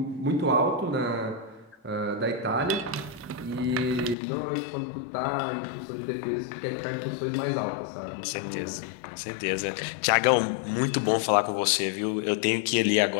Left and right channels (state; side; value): drops out; right; at 4.2 s